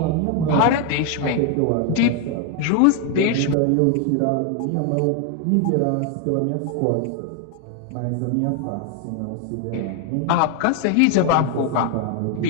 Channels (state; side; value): different; both; correlation 0.01